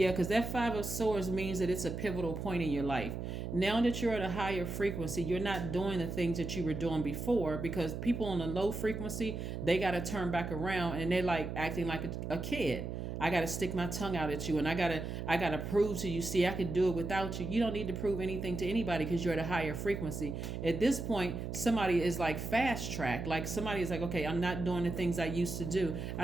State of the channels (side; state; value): right; noise; hum, 5 dB below the sound